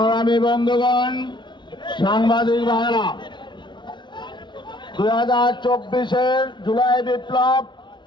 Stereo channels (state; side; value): late; right; 0.23 ms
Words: বন্ধুগণ, সাংবাদিক ভাইরা, 2024-এর জুলাই বিপ্লব